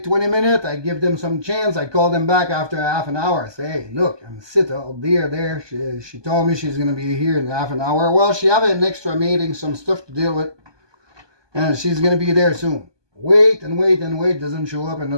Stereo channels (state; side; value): late; left; 1.2 ms